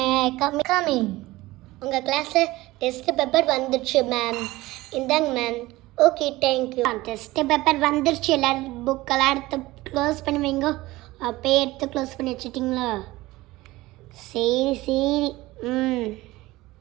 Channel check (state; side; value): quieter; left; 19.0 dB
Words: coming. உங்கள் கிளாஸில் டெஸ்ட்டு பேப்பர் வந்துடுச்சு மேம். இந்தாங்க மேம். Okay thank you. டெஸ்ட்டு பேப்பர் வந்துடுச்சு. எல்லோரும் புக்கெல்லாம் எடுத்து க்ளோஸ் பண்ணி வைங்க. அப்போயே எடுத்து க்ளோஸ் பண்ணி வச்சுட்டிங்களா? சரி சரி.